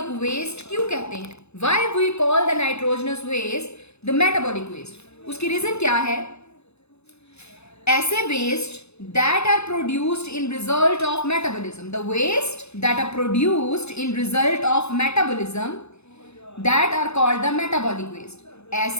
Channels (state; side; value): late; right; 0.80 ms